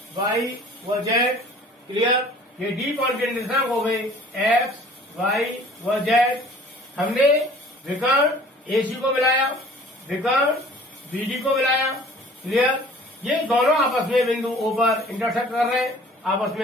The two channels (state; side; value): normal; both; correlation 0.50